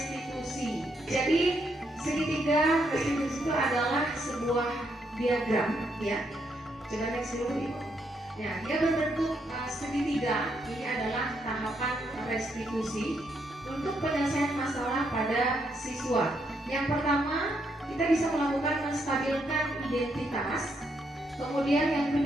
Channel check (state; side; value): normal; both; correlation 0.77